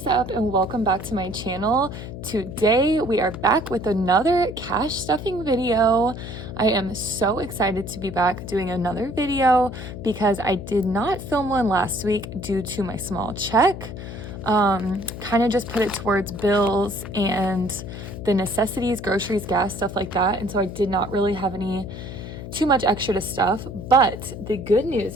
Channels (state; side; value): noise; left; hum, 10 dB below the sound